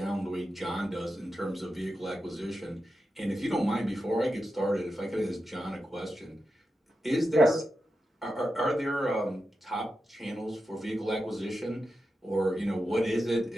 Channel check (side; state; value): both; normal; correlation 0.89